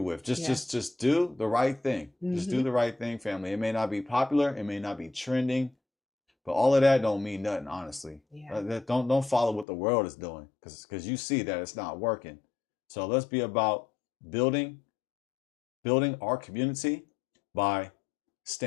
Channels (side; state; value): right; drops out; at 9.7 s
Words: with. Just do the right thing. Just do the right thing, family. It may not be popular. It may not be trending. But all of that don't mean nothing, honestly. Don't follow what the world is doing because you see that it's not working. So let's be about building our community by